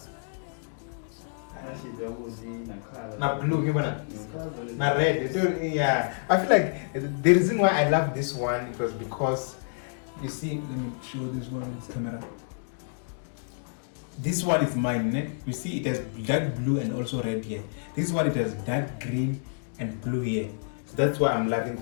Na blue, na red. Yeah, I feel like the reason why I love this one it was because you see. Let me show this one on this camera. This one is mine, né? You see it has dark blue and also red here. This one it has dark green and blue here. So that's why I'm loving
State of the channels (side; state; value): right; silent; digital silence